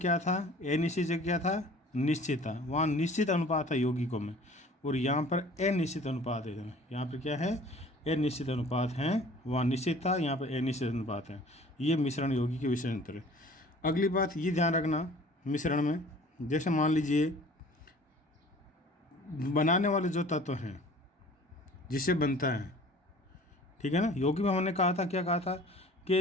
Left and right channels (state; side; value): normal; both; correlation 0.48